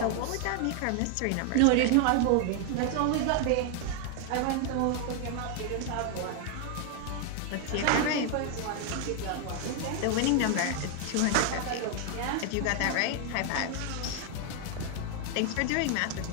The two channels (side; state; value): both; different; correlation 0.00